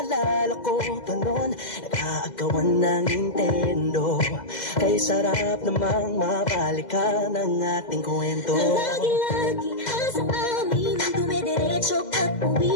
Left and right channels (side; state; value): right; late; 2.0 ms